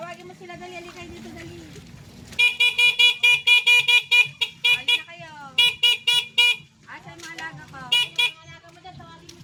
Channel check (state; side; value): identical; both; correlation 1.00